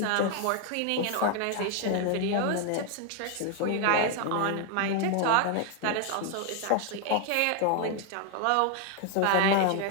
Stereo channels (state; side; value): different; both; correlation 0.00